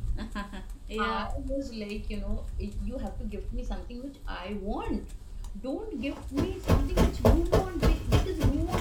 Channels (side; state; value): both; identical; correlation 1.00